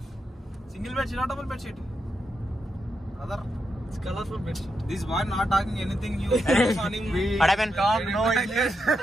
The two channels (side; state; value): both; normal; correlation 0.84